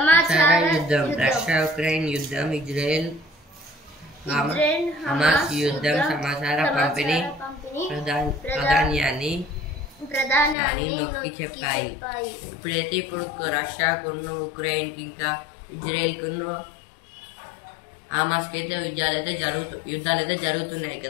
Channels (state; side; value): drops out; right; at 10.6 s